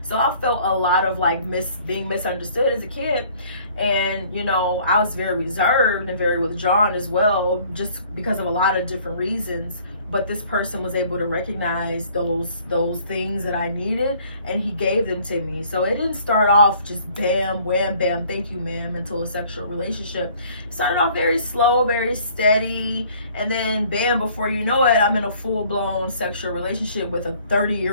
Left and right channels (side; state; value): both; inverted; correlation -0.56